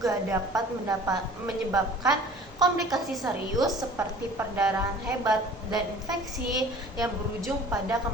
dapat menyebabkan komplikasi serius seperti perdarahan hebat dan infeksi yang berujung pada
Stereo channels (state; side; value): normal; both; correlation 0.46